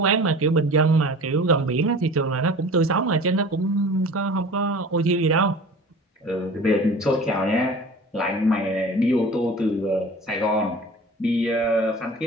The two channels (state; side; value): normal; both; correlation 0.41